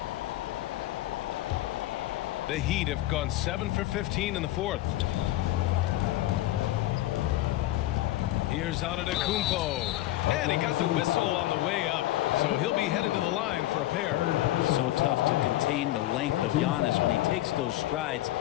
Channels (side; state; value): right; quieter; 15.6 dB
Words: The Heat have gone 7 for 15 in the 4th. Here's Antetokounmpo. And he got the whistle on the way up. So he'll be headed to the line for a pair. So tough to contain the length of Giannis. When he takes those strides,